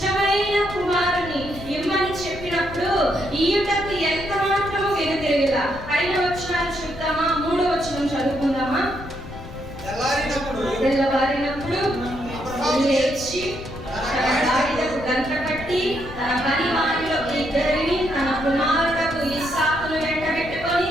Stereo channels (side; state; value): left; noise; rumble, 14 dB below the sound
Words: కుమారుని ఇమ్మని చెప్పినప్పుడు ఈయుటకు ఎంత మాత్రము వెనుతిరగలా. పైన వచనాలు చూద్దామా? 3వ వచనం చదువుకుందామా? తెల్లవారినప్పుడు లేచి తన గాడిదకు గంట కట్టి తన పని వారిలో 2 తన కుమారులకు ఇస్సాకును వెంటబెట్టుకొని